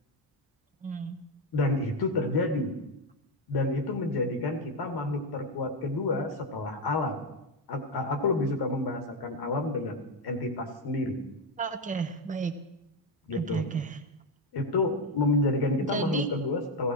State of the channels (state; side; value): normal; both; correlation 0.09